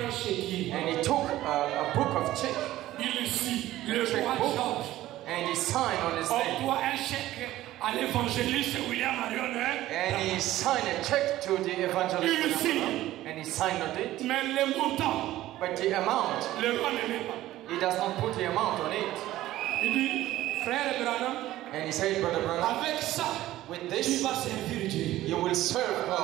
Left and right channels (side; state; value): left; quieter; 15.1 dB